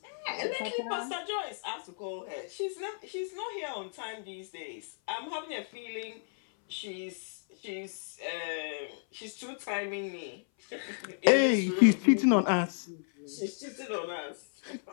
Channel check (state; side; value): silent; right; 56 dB below the other